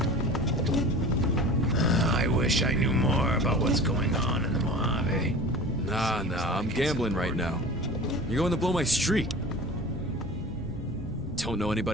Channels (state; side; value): normal; both; correlation 0.37